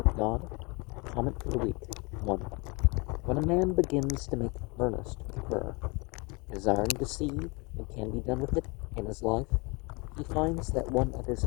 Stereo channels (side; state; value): right; quieter; 28.7 dB